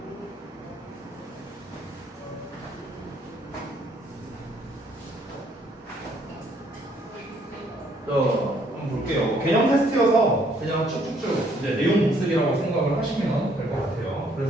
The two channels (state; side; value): normal; both; correlation 0.66